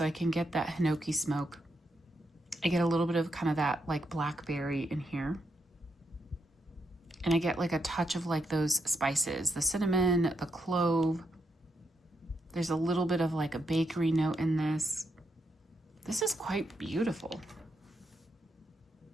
I can get that hinoki smoke. I get a little bit of kind of that like blackberry in here. And I get like a touch of like those spices, the cinnamon, the clove. There's a little bit of like a bakery note in this. This is quite beautiful.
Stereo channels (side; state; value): both; normal; correlation 0.81